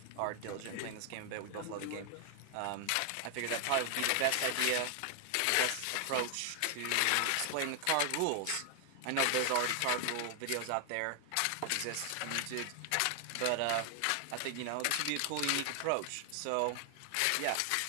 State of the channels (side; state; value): both; different; correlation 0.00